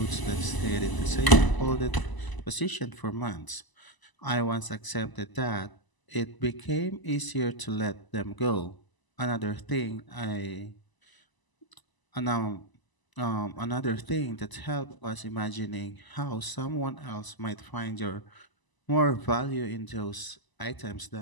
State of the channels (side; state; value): right; late; 1.0 ms